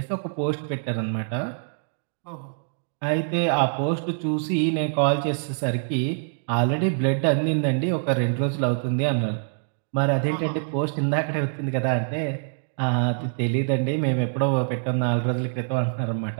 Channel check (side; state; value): left; silent; digital silence